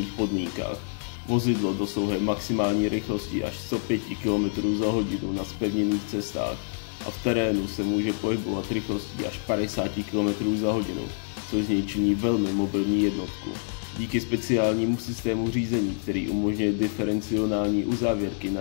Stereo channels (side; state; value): right; silent; 60 dB below the other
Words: podmínkách. Vozidlo dosahuje maximální rychlosti až 105 km za hodinu na zpevněných cestách a v terénu se může pohybovat rychlostí až 50 km za hodinu, což z něj činí velmi mobilní jednotku. Díky speciálnímu systému řízení, který umožňuje diferenciální uzávěrky na